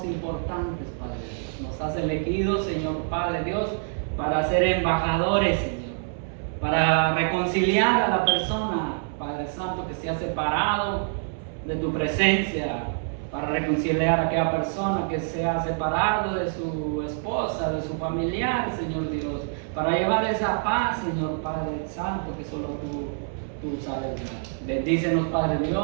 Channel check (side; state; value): left; silent; 61 dB below the other